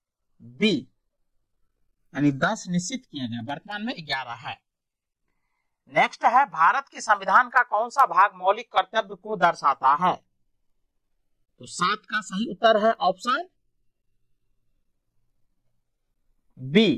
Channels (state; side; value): identical; both; correlation 1.00